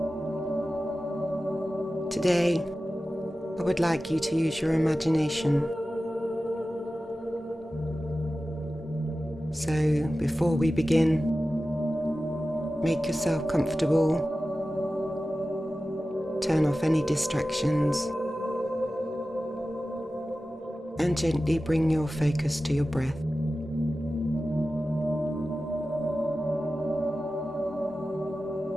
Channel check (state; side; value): normal; both; correlation 0.95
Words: Today, I would like you to use your imagination. So, before we begin, make yourself comfortable, turn off any distractions, and gently bring your focus to your breath.